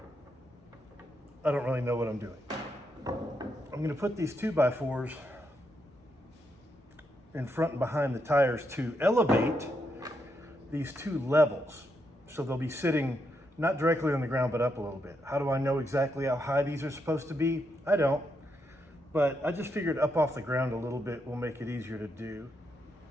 I don't really know what I'm doing. I'm gonna put these 2x4s in front and behind the tires to elevate these two levels. So they'll be sitting not directly on the ground, but up a little bit. How do I know exactly how high these are supposed to be? I don't, but I just figured up off the ground a little bit will make it easier to do.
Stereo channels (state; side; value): normal; both; correlation 0.81